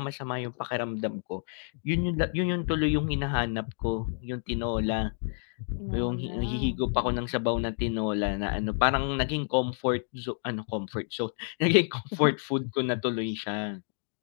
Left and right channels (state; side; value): silent; right; digital silence